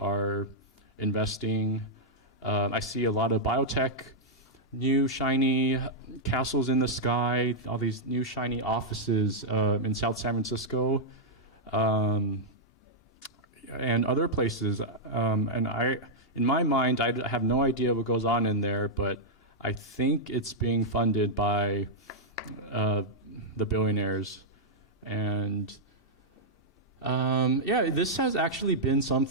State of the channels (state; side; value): normal; both; correlation -0.06